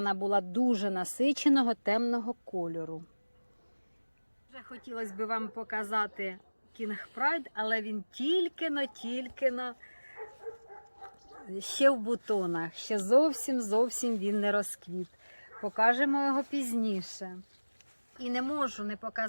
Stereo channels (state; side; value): inverted; both; correlation -1.00